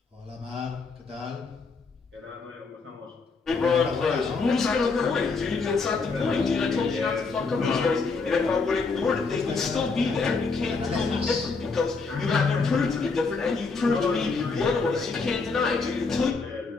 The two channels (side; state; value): right; quieter; 4.4 dB